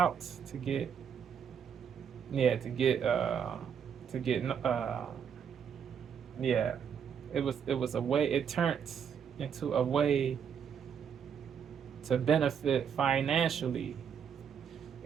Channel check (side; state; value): left; quieter; 7.7 dB